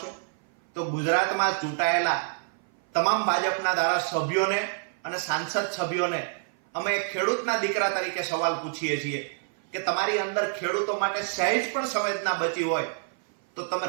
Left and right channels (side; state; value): left; silent; 56 dB below the other